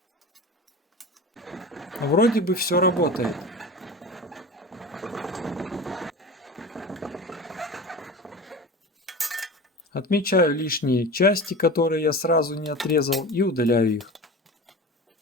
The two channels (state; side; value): normal; both; correlation 0.32